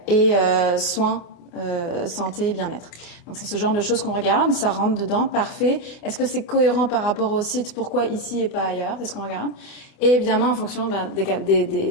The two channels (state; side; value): late; right; 28 ms